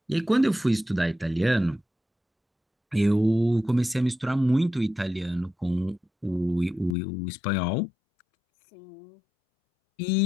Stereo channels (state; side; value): drops out; right; at 7.0 s